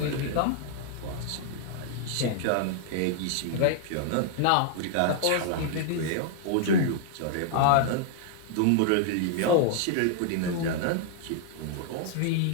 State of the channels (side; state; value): both; different; correlation -0.01